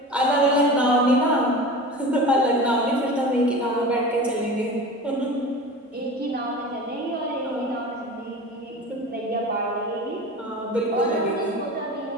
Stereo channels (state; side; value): normal; both; correlation 0.33